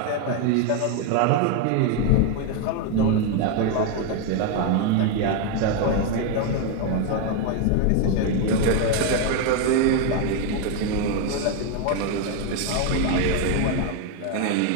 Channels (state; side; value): different; both; correlation 0.01